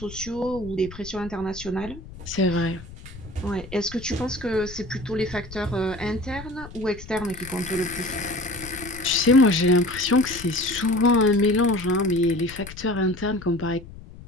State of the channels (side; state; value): left; noise; rumble, 15 dB below the sound